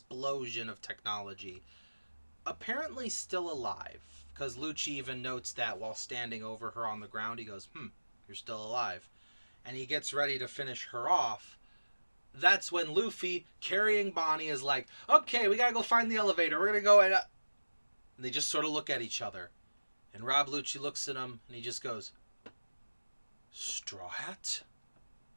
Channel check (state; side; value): inverted; both; correlation -1.00